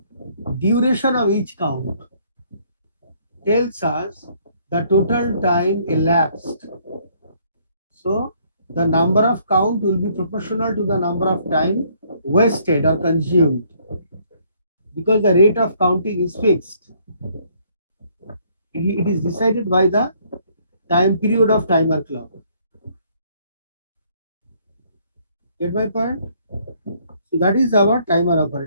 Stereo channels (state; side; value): inverted; both; correlation -0.65